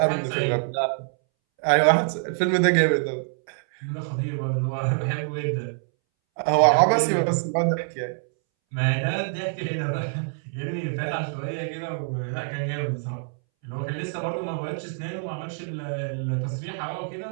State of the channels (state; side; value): silent; left; 61 dB below the other